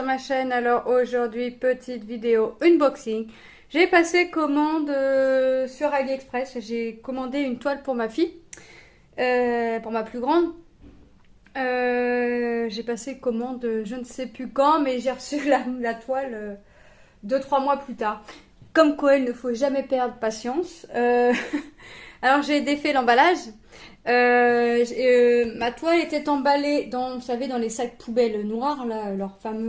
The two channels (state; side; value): identical; both; correlation 1.00